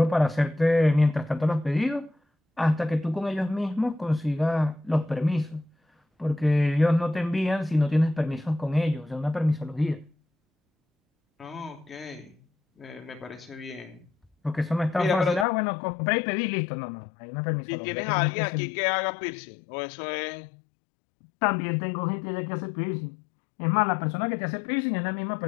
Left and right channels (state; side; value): drops out; right; at 15.5 s